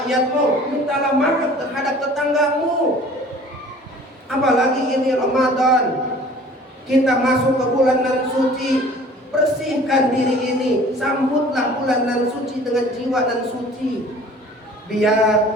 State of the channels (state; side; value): normal; both; correlation 0.48